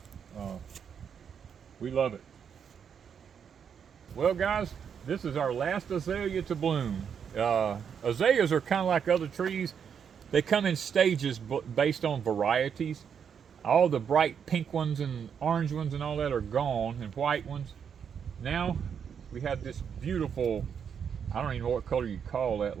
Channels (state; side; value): quieter; left; 7.4 dB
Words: We love it. Well, guys, this is our last azalea to bloom. Azaleas are kind of like other trees. They come in stages based on varieties. All the bright pink ones and orange ones and all that are gone, and white ones. Now we have this beautiful, I don't even know what color you call that,